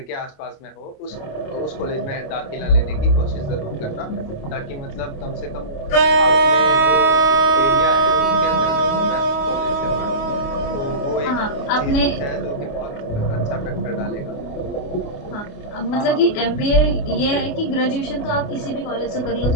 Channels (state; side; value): late; right; 28 ms